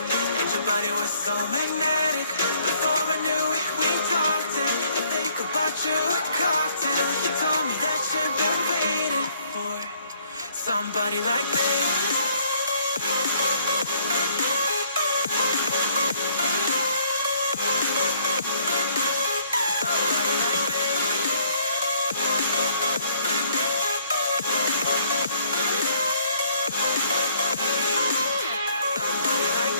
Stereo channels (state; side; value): inverted; both; correlation -0.63